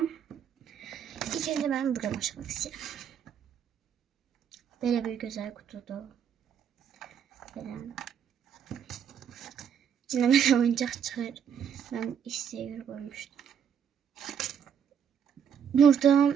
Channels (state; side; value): quieter; left; 7.9 dB